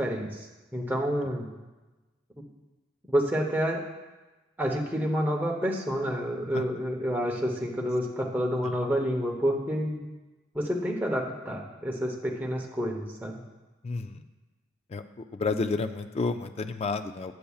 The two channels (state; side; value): normal; both; correlation 0.79